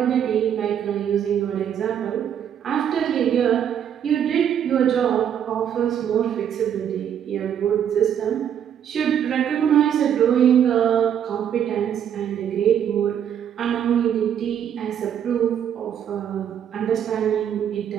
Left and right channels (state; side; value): quieter; left; 9.2 dB